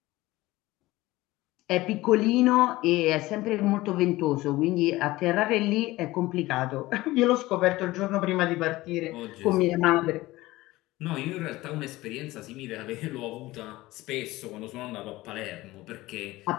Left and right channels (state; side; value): quieter; right; 18.6 dB